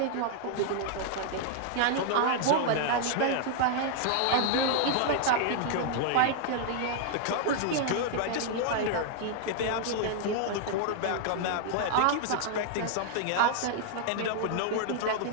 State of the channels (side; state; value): both; different; correlation 0.00